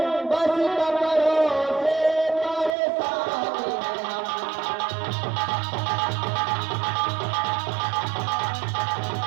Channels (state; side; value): drops out; left; at 2.8 s